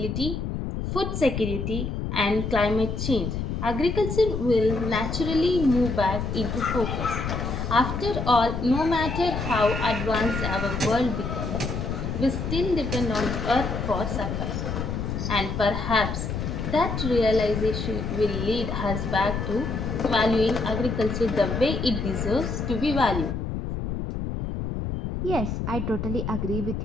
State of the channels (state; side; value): noise; left; rumble, 3 dB below the sound